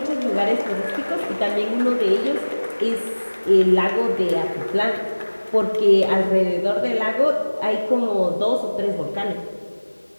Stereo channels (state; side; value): inverted; both; correlation -1.00